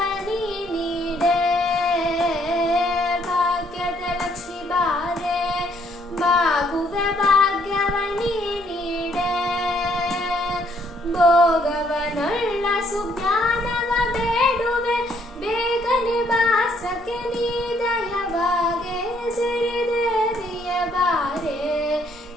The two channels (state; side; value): normal; both; correlation 0.68